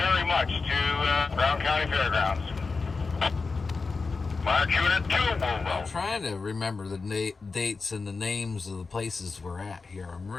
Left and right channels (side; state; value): right; quieter; 4.3 dB